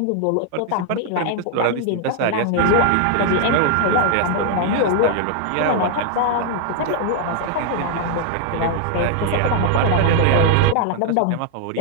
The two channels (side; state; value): both; different; correlation 0.00